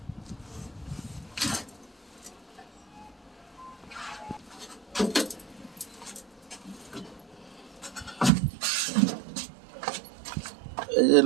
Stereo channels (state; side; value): drops out; left; at 8.3 s